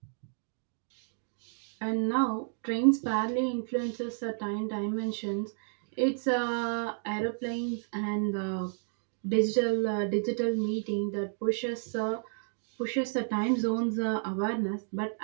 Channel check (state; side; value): silent; left; 57 dB below the other